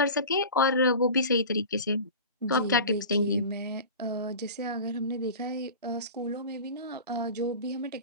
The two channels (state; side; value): inverted; both; correlation -0.35